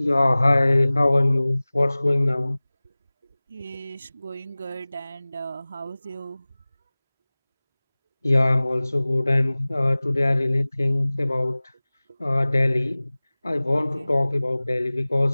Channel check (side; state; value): both; inverted; correlation -0.99